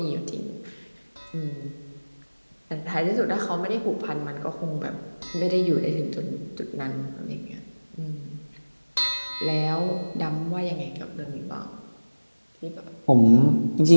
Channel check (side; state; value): both; inverted; correlation -1.00